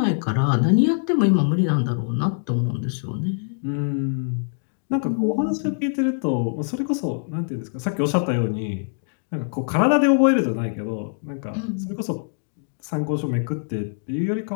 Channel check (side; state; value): right; silent; digital silence